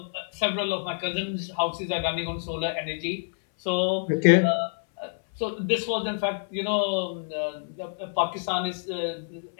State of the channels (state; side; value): silent; right; 60 dB below the other